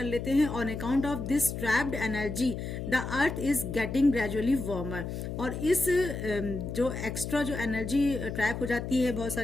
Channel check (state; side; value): noise; left; hum, 6 dB below the sound